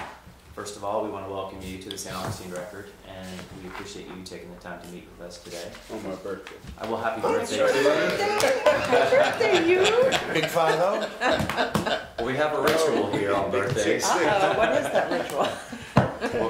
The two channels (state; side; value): identical; both; correlation 1.00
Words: First of all, we want to welcome you to the St. Augustine Record, and we appreciate you taking the time to meet with us today. On my birthday. Well, happy birthday. Happy birthday, you! Big 5-0? Well, we have a ritual here on birthdays. What is that ritual?